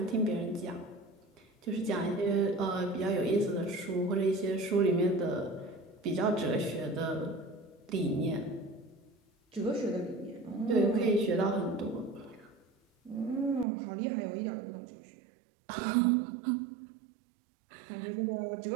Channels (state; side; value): drops out; left; at 13.7 s